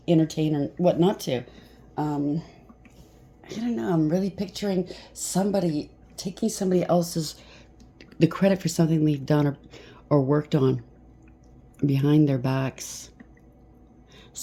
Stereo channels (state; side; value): identical; both; correlation 1.00